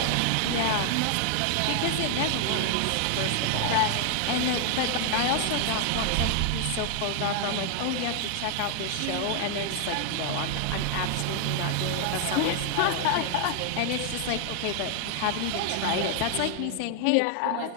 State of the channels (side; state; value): both; different; correlation 0.00